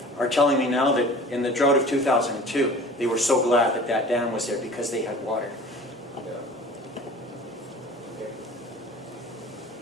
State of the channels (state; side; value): normal; both; correlation 0.43